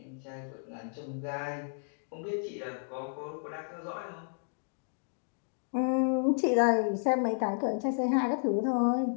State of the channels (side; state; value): right; silent; digital silence